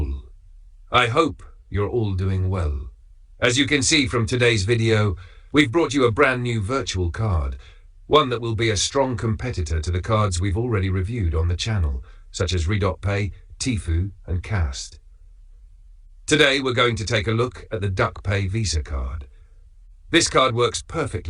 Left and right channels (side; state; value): both; identical; correlation 1.00